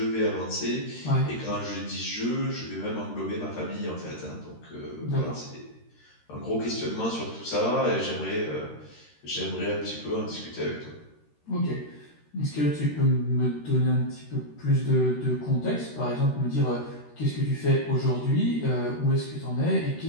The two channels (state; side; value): late; right; 13 ms